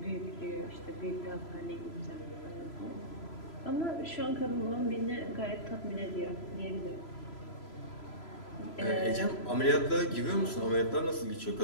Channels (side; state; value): right; late; 3.0 ms